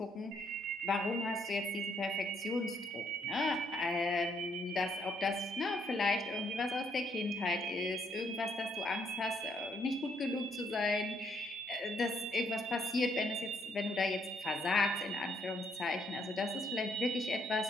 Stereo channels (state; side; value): normal; both; correlation 0.71